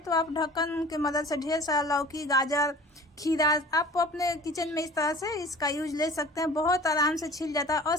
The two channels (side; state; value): both; normal; correlation 0.43